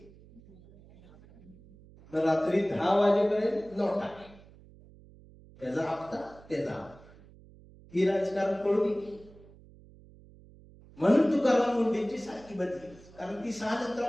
तर रात्री 10 वाजेपर्यंत नोटा, त्याचा हप्ता त्याचा. ही राजकारण कळू नये म्हणून तुकाराम मुंडेंची सारखी बदली. कारण ती 6 नंतर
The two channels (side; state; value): right; noise; hum, 23 dB below the sound